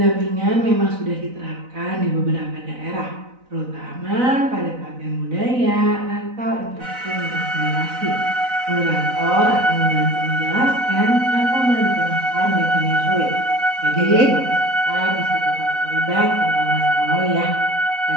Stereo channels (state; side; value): late; left; 4.0 ms